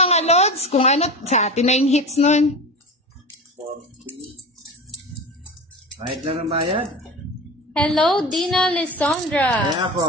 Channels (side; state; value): both; normal; correlation 0.29